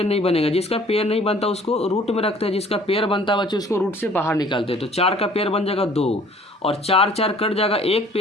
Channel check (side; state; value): both; normal; correlation 0.54